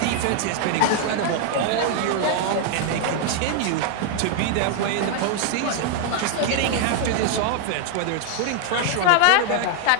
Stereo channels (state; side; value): different; both; correlation 0.00